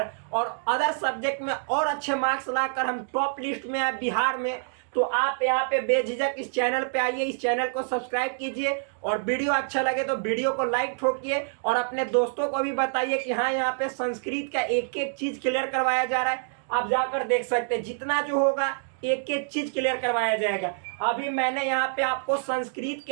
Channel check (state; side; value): silent; left; digital silence